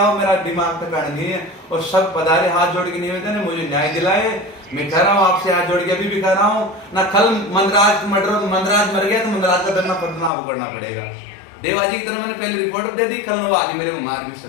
हो, मेरा दिमाग तक नहीं है, और सब पधारे, हाथ जोड़ के निवेदन है, मुझे न्याय दिलाए। मैं कह रहा हूँ आपसे हाथ जोड़ के, अभी भी कह रहा हूँ ना, कल मंदराज मर गया तो मंदराज का दंडना पदनाभ करना पड़ेगा। देवाजी की तरह मैंने पहले रिपोर्ट दे दी, कल आगे मेरे को मार भी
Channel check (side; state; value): right; drops out; at 10.3 s